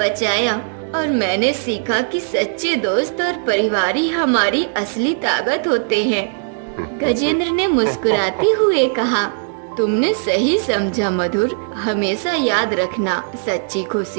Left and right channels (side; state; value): left; silent; 67 dB below the other